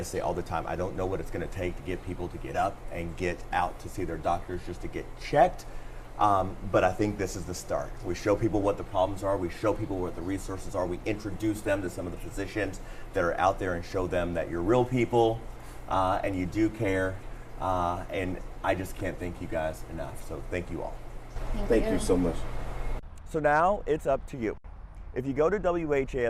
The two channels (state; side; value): identical; both; correlation 1.00